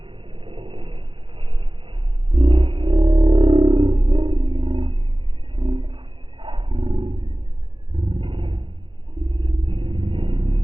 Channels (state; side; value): late; left; 0.25 ms